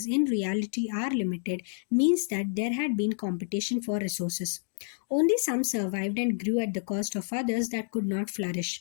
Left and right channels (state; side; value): silent; right; digital silence